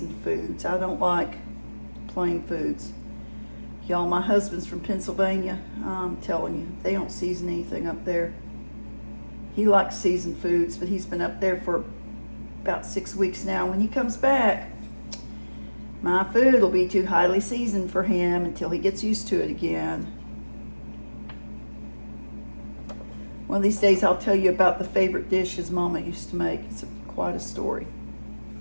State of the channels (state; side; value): inverted; both; correlation -1.00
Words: foods. I don't like plain foods. Y'all, my husband's from Pennsylvania. I'm telling you, they don't season anything up there. He likes seasoned foods, but he's been up there for about 6 weeks now. When he comes back, my food will be too highly seasoned for him until he gets used to it again. One of these days I'll tell you about the favorite dish his mama used to make. It's quite a story.